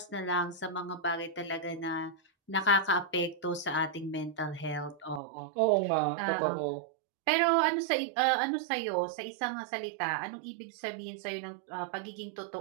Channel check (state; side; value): drops out; left; at 5.2 s